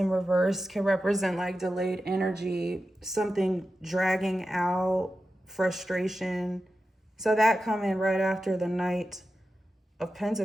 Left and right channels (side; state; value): both; normal; correlation 0.92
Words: reverse can represent like delayed energy, something dragging out, frustration. So that coming right after the Knight of